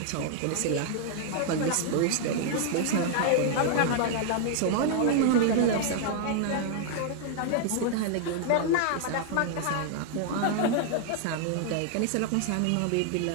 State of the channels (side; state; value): both; different; correlation 0.00